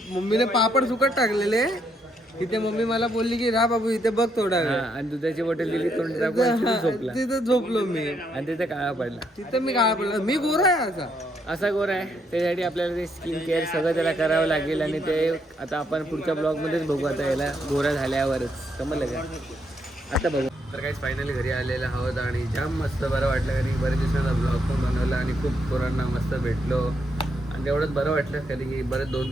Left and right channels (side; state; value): both; normal; correlation 0.75